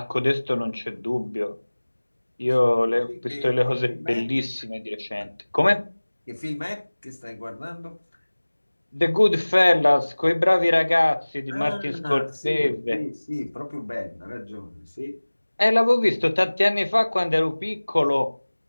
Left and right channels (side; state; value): both; inverted; correlation -1.00